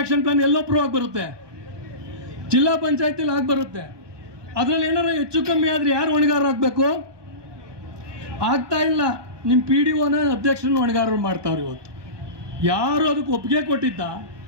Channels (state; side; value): late; left; 1.2 ms